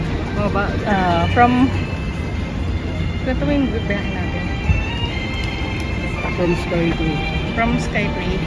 Ito yung bibiyahe natin. From Sky to... From Sky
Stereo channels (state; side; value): identical; both; correlation 1.00